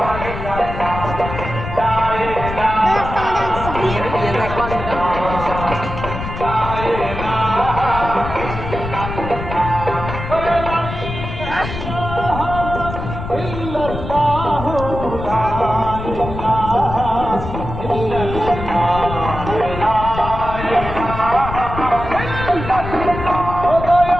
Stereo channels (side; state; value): left; noise; rumble, 7 dB below the sound